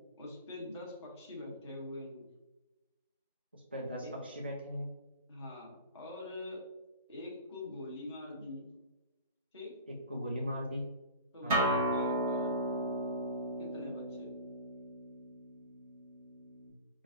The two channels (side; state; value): both; inverted; correlation -0.36